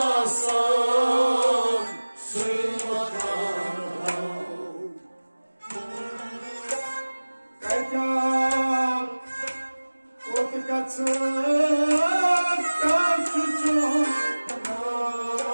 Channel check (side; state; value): both; inverted; correlation -1.00